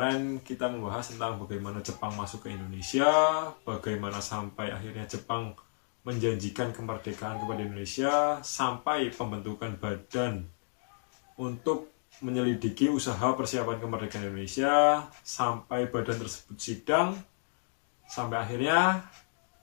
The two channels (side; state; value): right; silent; digital silence